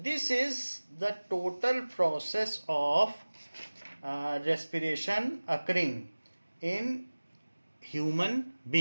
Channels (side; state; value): both; inverted; correlation -1.00